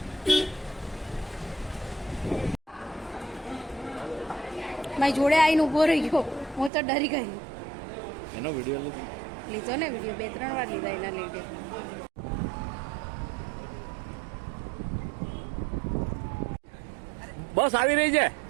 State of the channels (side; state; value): left; drops out; at 6.7 s